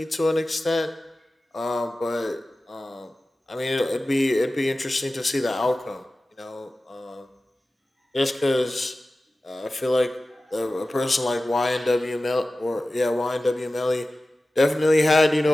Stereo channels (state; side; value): normal; both; correlation 0.96